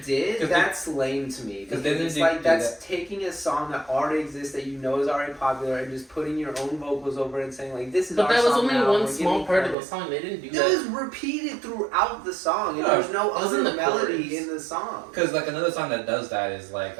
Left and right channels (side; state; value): left; drops out; at 9.8 s